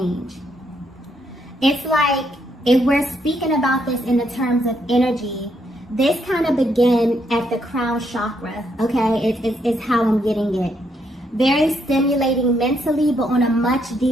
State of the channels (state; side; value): normal; both; correlation 0.75